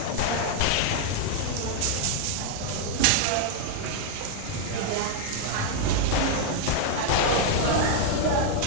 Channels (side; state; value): both; different; correlation 0.00